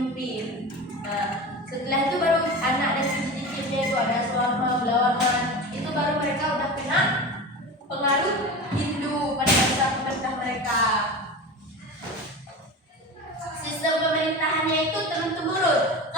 Nah, setelah itu baru anak dan cucu-cucunya itu ada Swarma, Belawarman, itu baru mereka udah kena pengaruh Hindu pada masa pemerintah mereka. Sistem pemerintahannya itu turun-temurun.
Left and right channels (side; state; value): both; normal; correlation 0.29